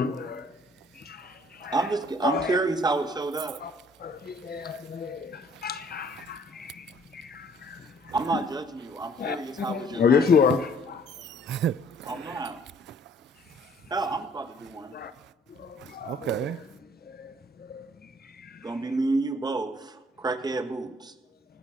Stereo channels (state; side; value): normal; both; correlation 0.59